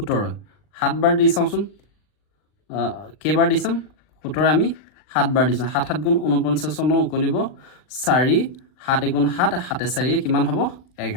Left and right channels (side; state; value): right; late; 39 ms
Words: 7 বাৰ দি চাওঁচোন কেইবাৰ দি চাম 17 আমি 7 বাৰ দিছোঁ 7 7 গুণ 49 উকলিব 4 7 গুণ 7 7 4 কিমান হ'ব